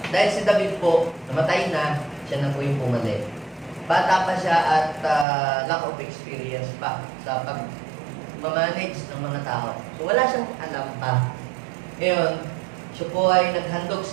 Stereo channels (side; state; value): left; drops out; at 5.2 s